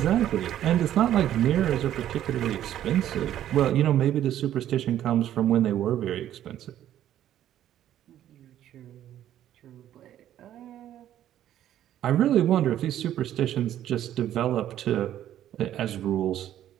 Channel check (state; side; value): quieter; left; 11.7 dB